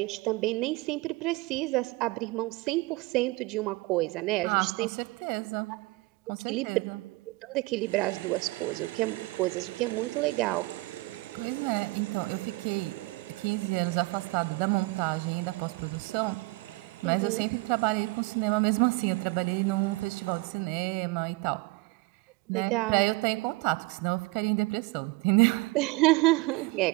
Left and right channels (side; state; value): left; quieter; 23.4 dB